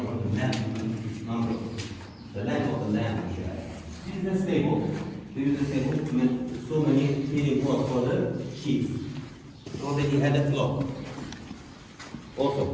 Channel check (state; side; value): identical; both; correlation 1.00